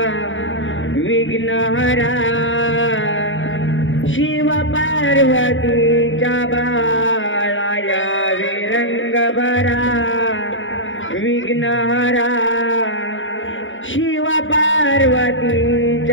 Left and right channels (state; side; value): late; right; 0.57 ms